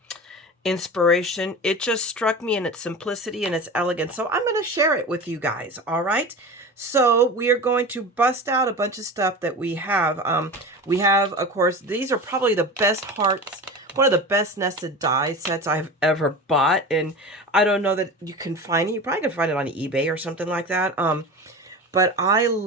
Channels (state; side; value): normal; both; correlation 0.31